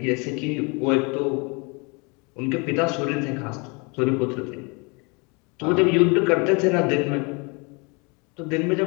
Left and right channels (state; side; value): quieter; right; 30.6 dB